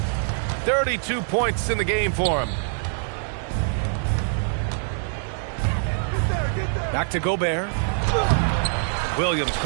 32 points in the game for him. Back to Gobert. Williams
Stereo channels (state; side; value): silent; left; digital silence